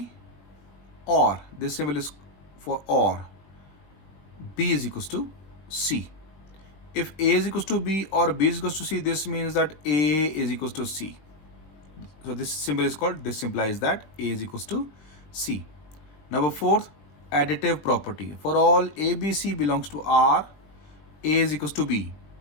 or this symbol is for or, b is equals to c. If a is equals to b or b is equals to c, this means that a is equals to c. So this symbol is called, this implies that a is equals to c. Number 4th, additive property. For all a, b, c belongs to r, a is equals to b.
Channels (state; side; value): late; right; 20 ms